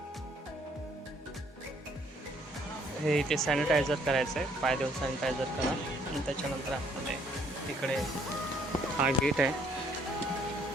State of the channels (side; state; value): both; normal; correlation 0.65